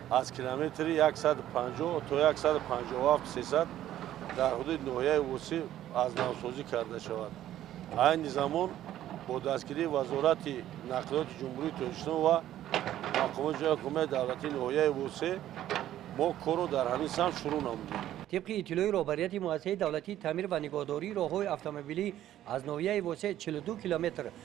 از کیلومتر 150 تا 157 300 در حدود ناحیه واسع از نوسازی کرده شود. این زمان با دستگیری وزارت نقلیات جمهوری تاجیکستان و مقامات جای حکومت دولتی ناحیه واسع ما کارو در همین سمت شروع نمودیم. طبق اطلاع رهبریت مؤسسه دولتی تعمیر و نگهداری راههای اتومبیلی از ناحیه واسع 42 کیلومتر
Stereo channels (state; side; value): quieter; left; 12.6 dB